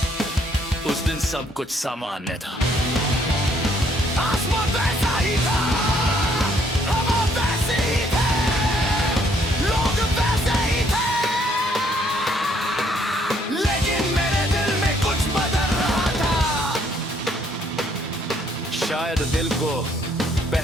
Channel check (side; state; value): both; normal; correlation 0.67